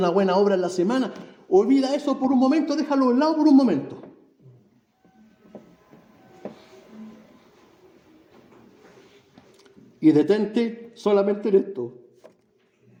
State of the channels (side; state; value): both; identical; correlation 1.00